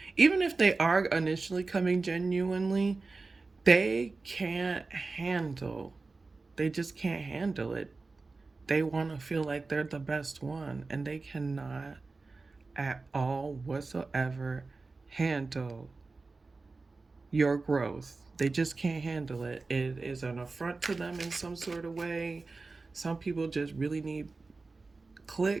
Even if they are initially coming genuinely, they can't handle, they just can't handle it. They want to feel like they're the best one, and they cannot at all whatsoever handle your growth. They just can't handle it. It is an affront to them in some sort of way. Some people just really need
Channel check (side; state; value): left; quieter; 3.8 dB